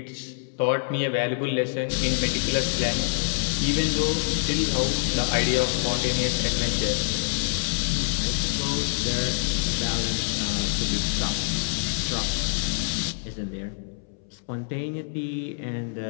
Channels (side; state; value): right; silent; 61 dB below the other